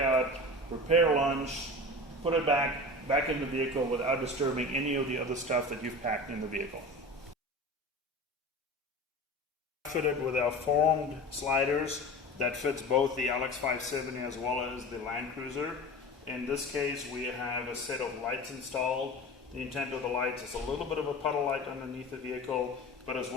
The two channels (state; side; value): normal; both; correlation 0.33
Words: prepare lunch, put it back in the vehicle without disturbing any of the other stuff that you've packed in the vehicle. Fitted with our formed sliders that fits both the LX570 as well as the Land Cruiser. In this case, we have a set of lights installed. The intent of the lights is a little bit of a puddle light underneath the vehicle, but as